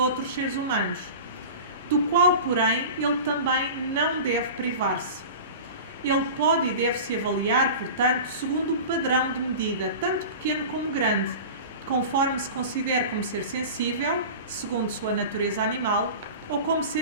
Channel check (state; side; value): inverted; both; correlation -0.33